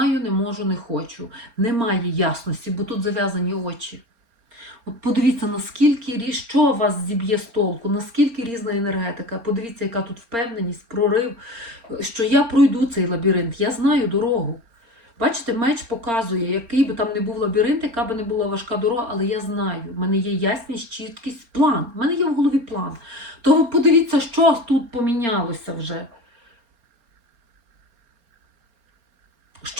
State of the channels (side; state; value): left; late; 4.3 ms